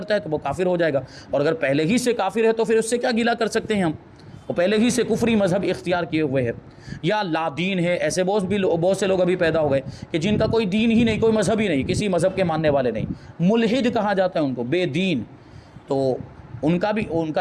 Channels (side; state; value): both; identical; correlation 1.00